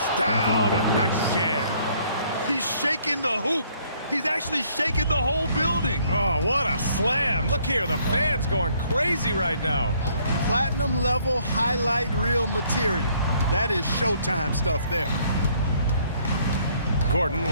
down. A nice jam. He's shaking the hoop. He's actually shaking the whole building. Oh, what a slam. Look here, the fans going crazy right now. Platinum level highlight reel material. That is Showtime stuff there. Gordon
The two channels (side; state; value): both; inverted; correlation -0.64